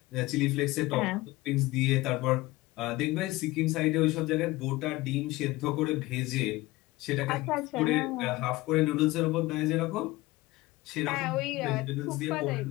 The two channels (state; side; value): quieter; right; 19.7 dB